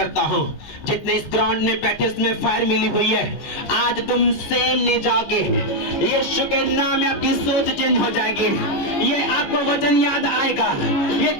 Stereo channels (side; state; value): right; late; 14 ms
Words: हूँ, जितने इस ग्राउंड में बैठे इसमें फायर मिली हुई है, आज तुम सेम नहीं जाओगे। यीशु के नाम में आपकी सोच चेंज हो जाएगी। ये आपको वचन याद आएगा, ये